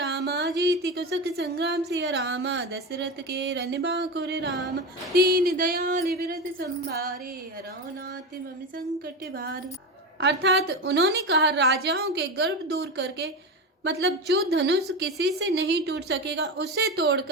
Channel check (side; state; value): both; normal; correlation 0.20